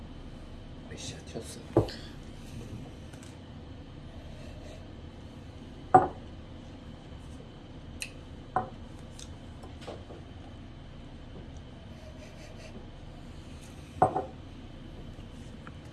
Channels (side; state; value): both; identical; correlation 1.00